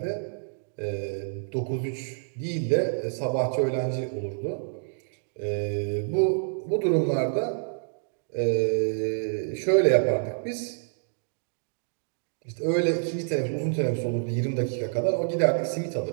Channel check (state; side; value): silent; left; digital silence